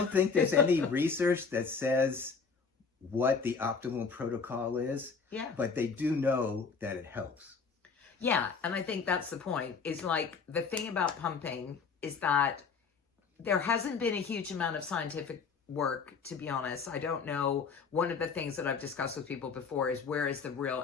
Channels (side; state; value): right; quieter; 5.3 dB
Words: think there's any research that says what the optimal protocol is, but they do know that it helps. Yeah, and I think that's the point, is like the thing about pumping is that there hasn't been a huge amount of scientific work, to be honest. I don't know. One of the things that I've discussed with people before is, where is the real